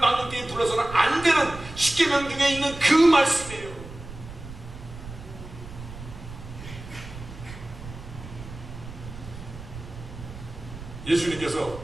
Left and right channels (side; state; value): right; noise; rumble, 13 dB below the sound